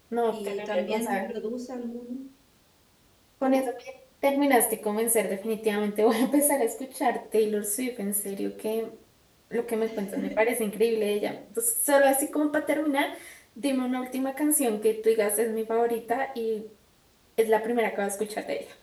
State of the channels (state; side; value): identical; both; correlation 1.00